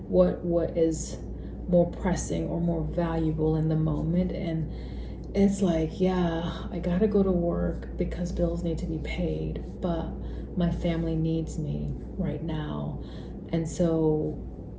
what is more pressing or more valuable in the moment. And it's like, yeah, I gotta go to work because bills need to be paid, but my family needs me right now, and so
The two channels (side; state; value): both; identical; correlation 1.00